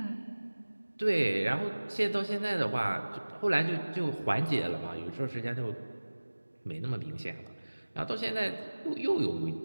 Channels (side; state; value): both; inverted; correlation -1.00